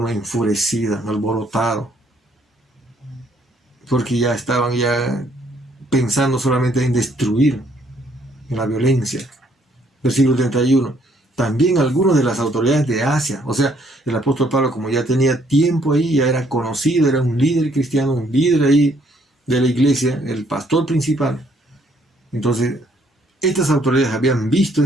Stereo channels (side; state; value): both; normal; correlation 0.67